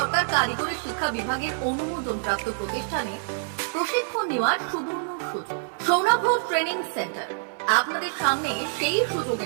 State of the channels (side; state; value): left; silent; digital silence